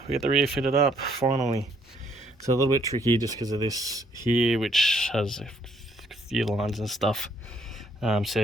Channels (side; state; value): both; normal; correlation 0.68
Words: we get the rear fitted up finally. So a little bit tricky just because of this here, which has a few lines and stuff.